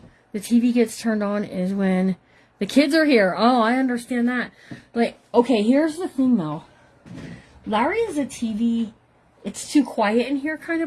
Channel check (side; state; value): both; identical; correlation 1.00